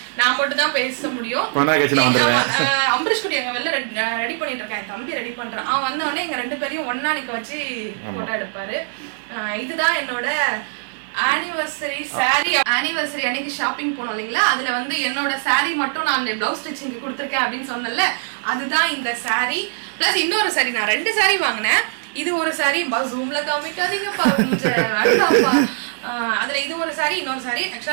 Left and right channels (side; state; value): left; silent; 62 dB below the other